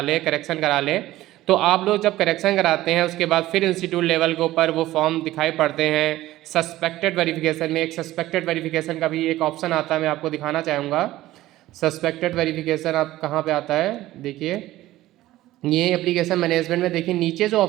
करा लें। तो आप लोग जब करेक्शन कराते हैं उसके बाद फिर इंस्टीट्यूट लेवल के ऊपर वो फॉर्म दिखाई पड़ते हैं। सस्पेक्टेड वेरिफिकेशन में एक सस्पेक्टेड वेरिफिकेशन का भी एक ऑप्शन आता है, मैं आपको दिखाना चाहूँगा। सस्पेक्टेड वेरिफिकेशन आप कहाँ पे आता है, देखिए ये एप्लीकेशन मैनेजमेंट में देखिए नीचे जो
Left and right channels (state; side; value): quieter; left; 15.8 dB